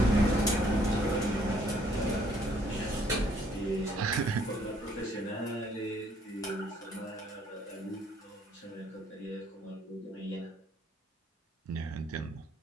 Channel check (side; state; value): both; normal; correlation 0.65